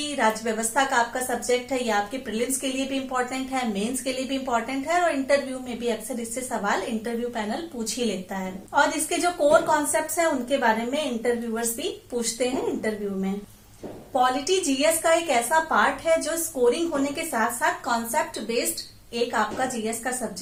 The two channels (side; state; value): both; identical; correlation 1.00